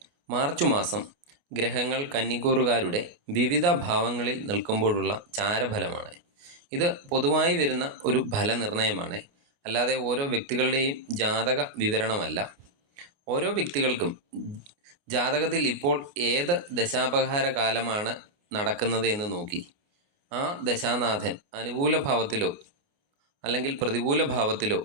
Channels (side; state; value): left; late; 29 ms